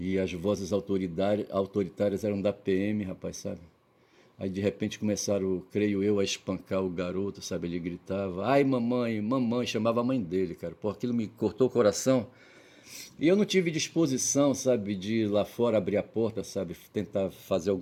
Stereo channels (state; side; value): identical; both; correlation 1.00